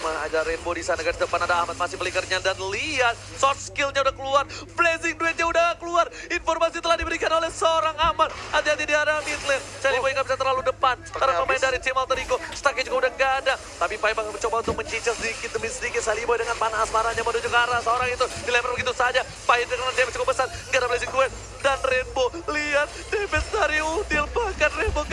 ada Rainbow di sana. Garis depan ada Ahmad masih belikernya dan lihat short skillnya udah keluar, Blazing Duetnya udah keluar. Informasi telah diberikan oleh seorang Ahmad. Hati-hati di arah mid lane. Sally Boy nggak bisa terlalu depan karena pemain dari tim Alter Ego. Stacknya juga udah nggak ada. Tapi Pai bakal mencoba untuk mencicil sedikit demi sedikit. Sally Boy dengan panah asmaranya menuju ke arah seorang itu. Dilempar begitu saja. Pai dengan damage cukup besar. Nggak ada Blazing Duet. Dan Rainbow, lihat damage dari Udil. Bahkan Rainbow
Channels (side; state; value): both; identical; correlation 1.00